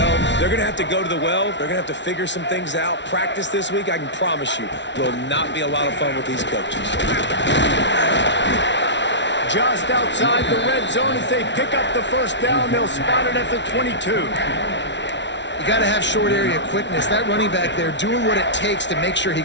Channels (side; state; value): right; late; 0.52 ms